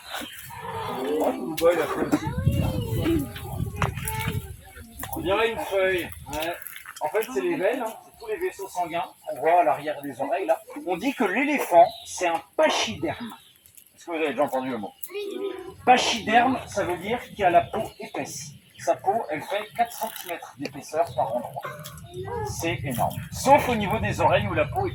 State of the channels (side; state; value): both; identical; correlation 1.00